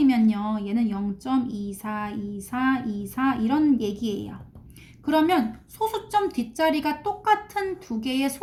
얘는 0.242424 이런 얘기예요. 그러면 소수점 뒷자리가 똑같은 두 개의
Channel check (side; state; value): both; identical; correlation 1.00